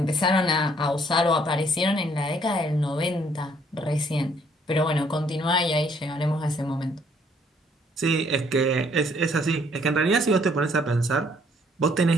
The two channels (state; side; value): normal; both; correlation 0.64